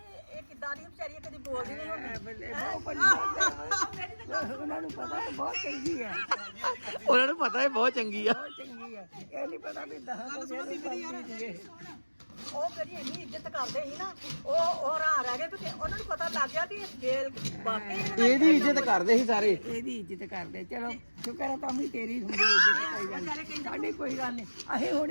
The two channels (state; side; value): inverted; both; correlation -1.00